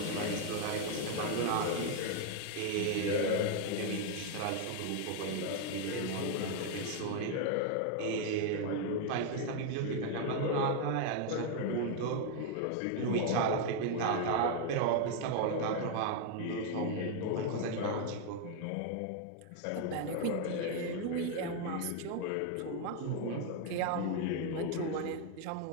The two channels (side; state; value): both; different; correlation 0.00